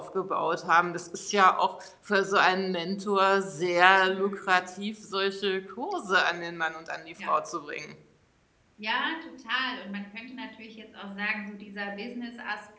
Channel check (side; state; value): both; identical; correlation 1.00